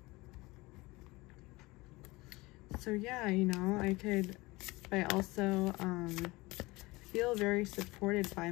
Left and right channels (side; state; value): right; quieter; 22.1 dB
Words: So yeah, you know, I also feel very supported by